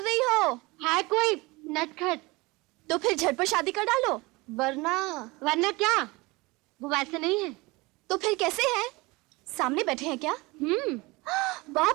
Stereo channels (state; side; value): quieter; left; 23.5 dB